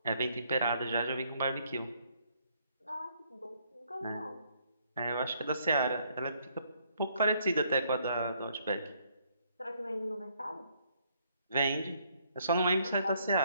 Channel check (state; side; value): inverted; both; correlation -0.68